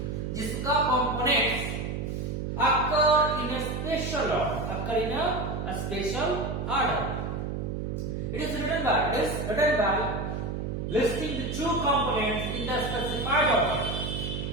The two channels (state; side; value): noise; right; hum, 3 dB below the sound